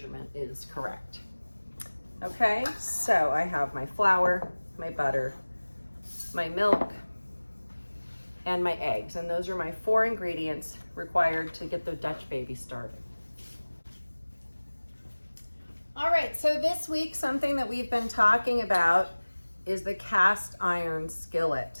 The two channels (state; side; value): inverted; both; correlation -1.00